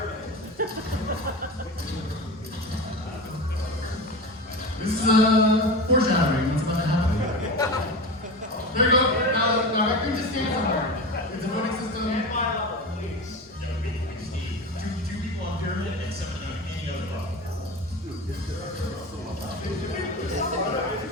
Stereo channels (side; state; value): both; normal; correlation 0.27